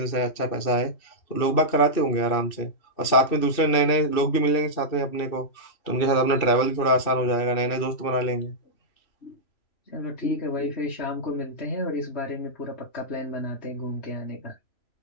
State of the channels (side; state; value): right; late; 2.6 ms